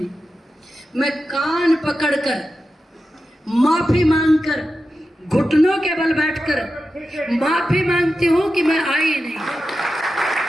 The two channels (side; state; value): both; normal; correlation 0.91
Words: मैं कान पकड़कर माफी मांगकर घुटनों के बल बैठकर माफी मांगती हूं कि मैं आई नहीं।